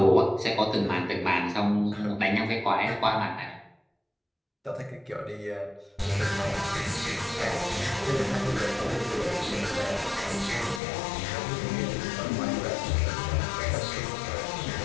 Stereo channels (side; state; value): right; drops out; at 10.8 s